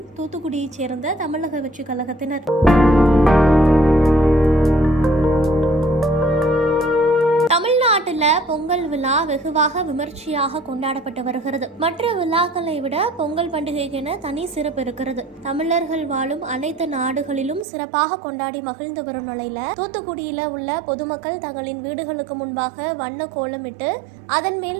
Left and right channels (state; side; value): drops out; left; at 17.7 s